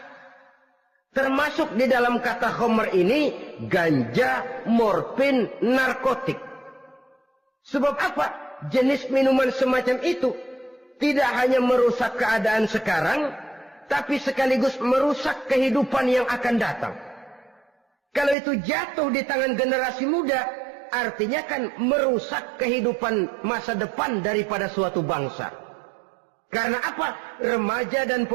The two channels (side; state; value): left; drops out; at 18.4 s